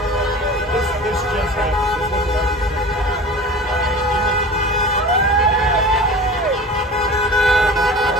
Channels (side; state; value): both; normal; correlation 0.37